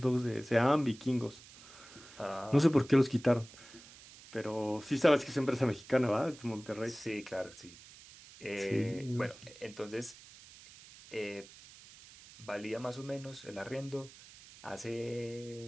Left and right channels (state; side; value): noise; right; hiss, 20 dB below the sound